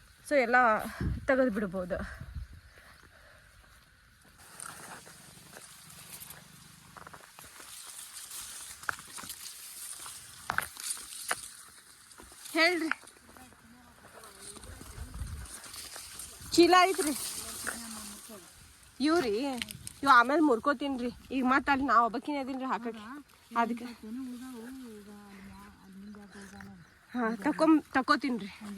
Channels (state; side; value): identical; both; correlation 1.00